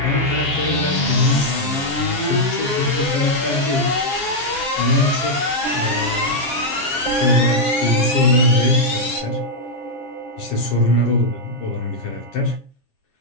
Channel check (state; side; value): late; right; 7.4 ms